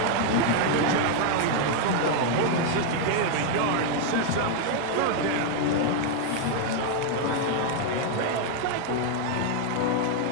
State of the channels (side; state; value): both; different; correlation 0.00